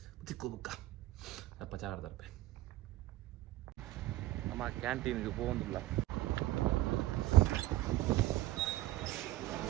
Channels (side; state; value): left; quieter; 16.1 dB